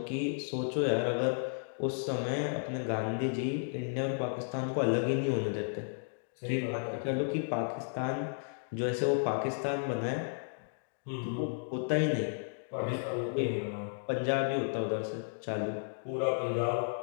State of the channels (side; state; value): right; silent; digital silence